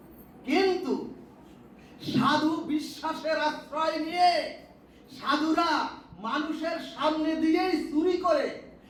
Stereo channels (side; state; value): both; identical; correlation 1.00